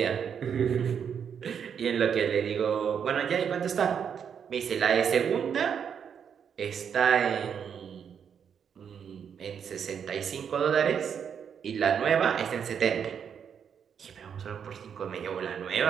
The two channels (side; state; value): left; quieter; 7.6 dB